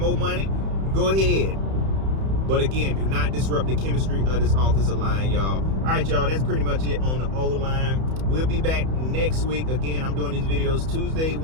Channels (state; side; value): late; left; 31 ms